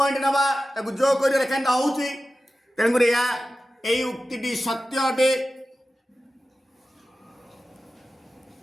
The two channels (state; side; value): normal; both; correlation 0.94